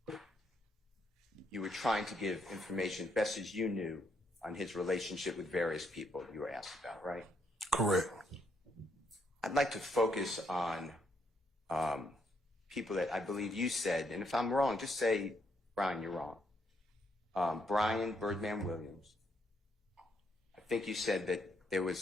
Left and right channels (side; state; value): both; normal; correlation 0.74